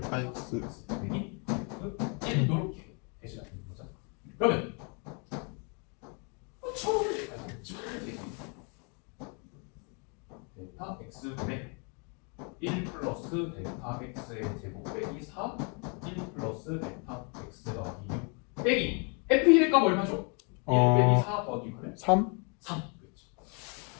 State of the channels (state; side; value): quieter; right; 36.4 dB